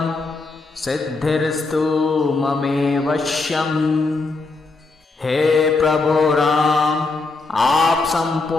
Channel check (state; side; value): quieter; right; 3.7 dB